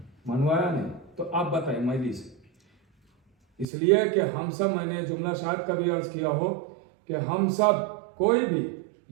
منوایا نہیں۔ تو آپ بتائیں مجلس، اس لیے کہ ہم سب، میں نے جملہ شاید کبھی عرض کیا ہو کہ ہم سب، کوئی بھی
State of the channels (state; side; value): drops out; left; at 3.7 s